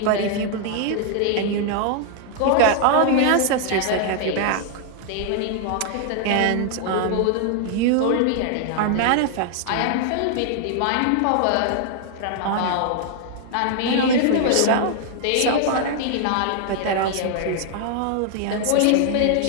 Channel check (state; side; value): different; both; correlation 0.00